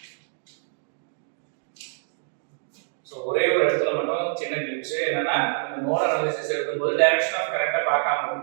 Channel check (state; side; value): silent; left; 61 dB below the other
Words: சோ ஒரே ஒரு இடத்துல மட்டும் சின்ன கிளிப்ஸ் என்னன்னா இந்த நோட் அனாலிசிஸ் எடுக்கும்போது டைரக்ஷன் ஆஃப் கரண்ட பார்க்காம